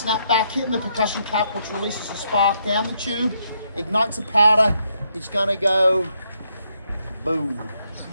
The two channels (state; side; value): inverted; both; correlation -0.76